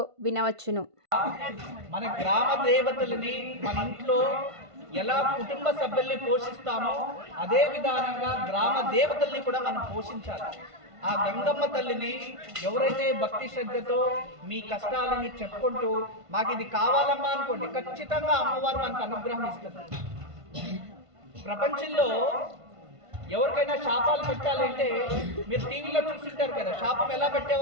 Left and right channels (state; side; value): late; left; 1.5 ms